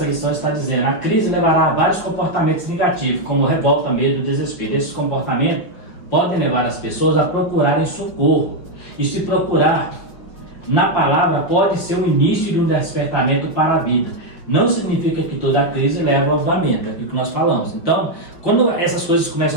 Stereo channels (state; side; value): late; right; 5.7 ms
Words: lição está dizendo: a crise levará a vários comportamentos negativos, como revolta, medo, desespero. Esses comportamentos podem levar as pessoas a procurarem socorro. E se procurar na palavra pode ser o início de um despertamento para a vida. Não significa que toda crise leva ao avivamento, é aquilo que nós falamos. Então, quando essas coisas